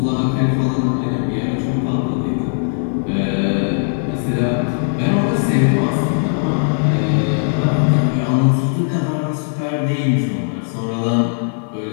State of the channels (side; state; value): right; silent; digital silence